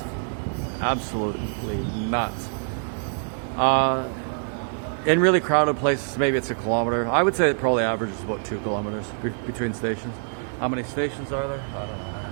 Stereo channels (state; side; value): silent; left; 62 dB below the other